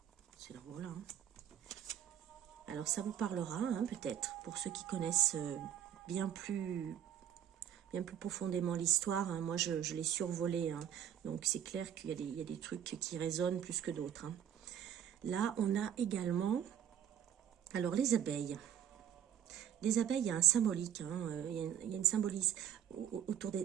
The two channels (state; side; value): quieter; left; 9.6 dB